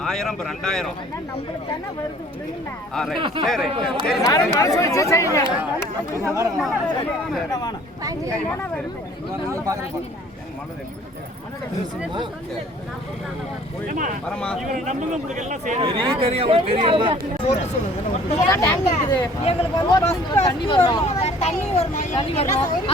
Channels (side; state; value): both; normal; correlation 0.53